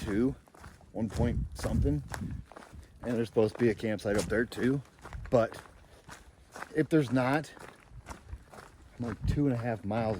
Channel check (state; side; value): identical; both; correlation 1.00